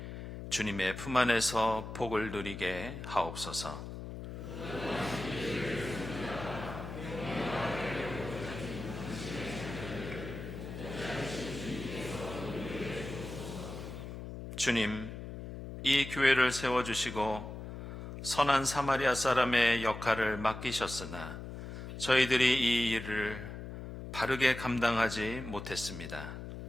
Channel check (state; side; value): noise; left; hum, 9 dB below the sound